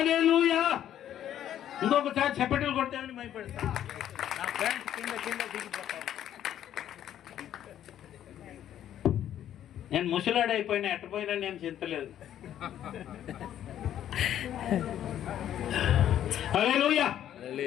ఇంకొకసారి చెప్పటలు కొట్టామని భయపడతా. నా ఫ్రెండ్స్ కింద దిగిపోతాను. నేను ముసలాడైపోయినా ఎట్టపోయినా నేను చింతలేదు. హల్లెలూయా.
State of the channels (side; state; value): right; quieter; 11.0 dB